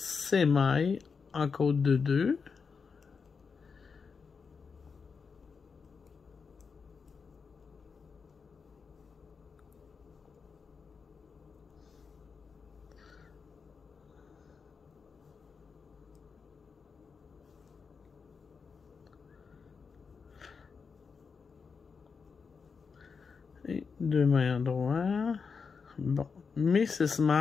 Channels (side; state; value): right; quieter; 5.4 dB